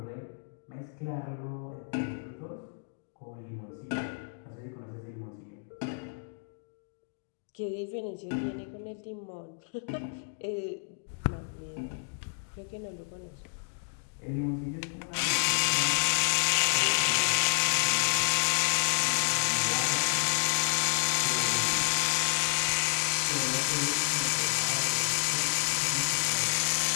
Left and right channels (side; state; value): right; silent; digital silence